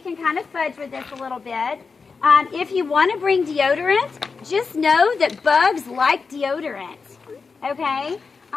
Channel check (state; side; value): quieter; right; 4.9 dB